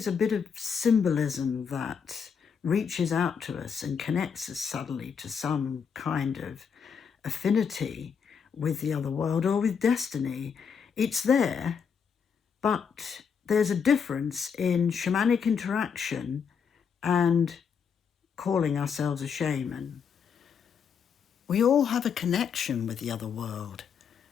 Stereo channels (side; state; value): right; quieter; 6.6 dB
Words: a bit of symbolism that reaches out to us and connects us suddenly to some kind of affinity with the other world or with destiny. It's there, but there's a difference in shamanic interaction and calling ourselves a shaman. We all have a connection with the other world,